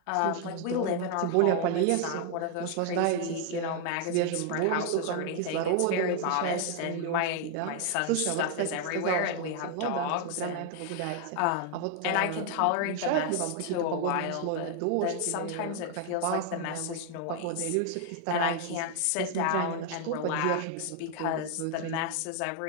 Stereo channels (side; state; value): both; different; correlation 0.00